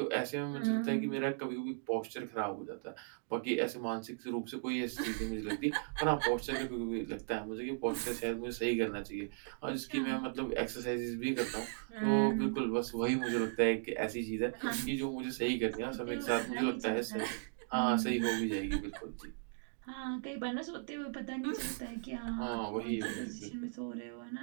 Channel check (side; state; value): left; silent; digital silence